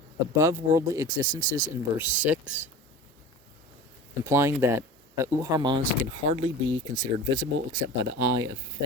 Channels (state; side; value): normal; both; correlation 0.36